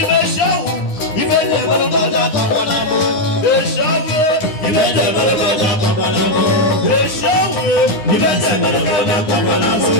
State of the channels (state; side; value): late; right; 9.7 ms